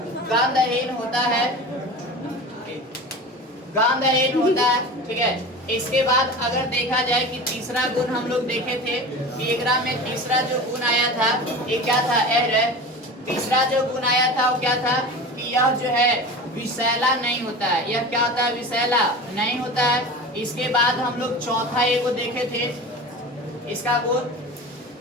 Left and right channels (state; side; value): normal; both; correlation 0.33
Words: गंधहीन होता है, गंधहीन होता है, ठीक है। इसके बाद अगर देखा जाए कि तीसरा गुण हम लोग देखे थे कि एकरा में तीसरा जो गुण आया था ये क्या था, तीसरा जो गुण आया था वो क्या था कि यह जो है विषैला नहीं होता है। यह क्या होता है, विषैला नहीं होता है। इसके बाद हम लोग चौथा ये को देखे थे, इसका गुण